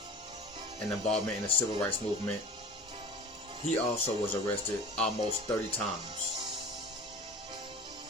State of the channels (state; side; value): normal; both; correlation 0.38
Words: and involvement in the civil rights movement, he also was arrested almost 30 times.